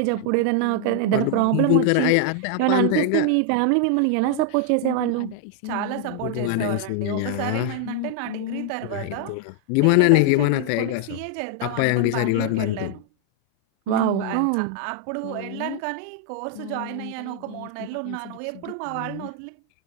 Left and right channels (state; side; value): different; both; correlation 0.00